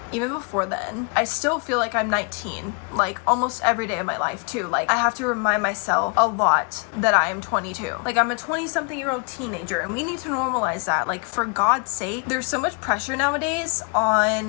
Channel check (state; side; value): quieter; right; 34.4 dB